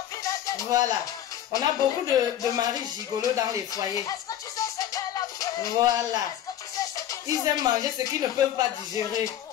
Voilà. On a beaucoup de maris gigolos dans les foyers. Voilà. Ils aiment manger ce qu'ils ne peuvent pas digérer.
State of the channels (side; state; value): right; quieter; 11.1 dB